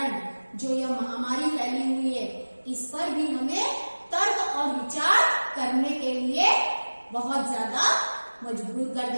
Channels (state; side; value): inverted; both; correlation -1.00